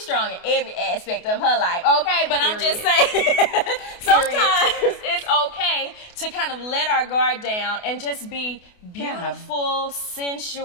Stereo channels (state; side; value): late; right; 28 ms